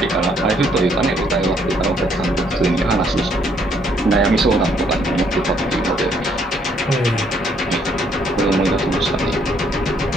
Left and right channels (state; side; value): normal; both; correlation 0.68